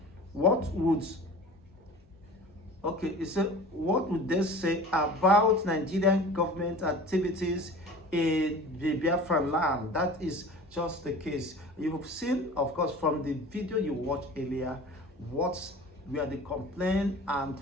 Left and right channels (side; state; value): both; normal; correlation 0.40